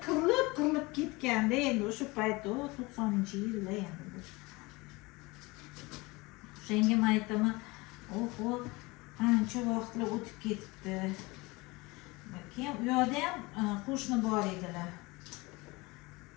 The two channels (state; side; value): quieter; right; 23.7 dB